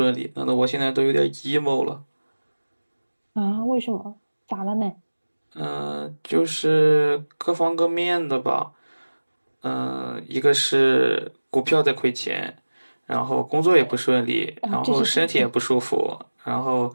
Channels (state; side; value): inverted; both; correlation -1.00